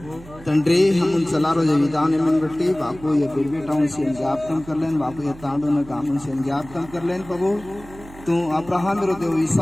తండ్రి हम चलारो जे विधान मन बट्टी बापू ये बेटाओं से ज्ञापन कर लेन बापू ये तांडो न गामन से ज्ञापन कर लेन प्रभु तू अब्राहम रो देव,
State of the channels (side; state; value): right; noise; hum, 19 dB below the sound